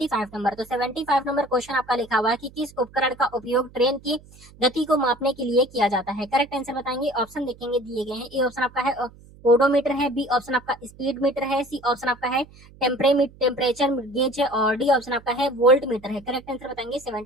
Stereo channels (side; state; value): right; noise; hum, 23 dB below the sound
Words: नंबर। तो 75 नंबर क्वेश्चन आपका लिखा हुआ है कि किस उपकरण का उपयोग ट्रेन की गति को मापने के लिए किया जाता है। करेक्ट आंसर बताएंगे। ऑप्शन देखेंगे दिए गए हैं। ए ऑप्शन आपका है ओडोमीटर है। बी ऑप्शन आपका स्पीड मीटर है। सी ऑप्शन आपका है टेम्परेचर गेज है। और डी ऑप्शन आपका है वोल्ट मीटर है। करेक्ट आंसर बताएंगे